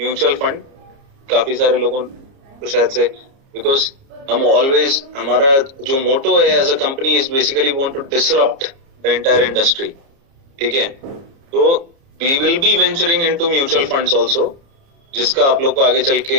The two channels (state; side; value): late; left; 30 ms